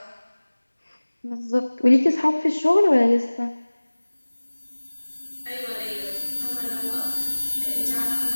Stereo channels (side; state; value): both; inverted; correlation -1.00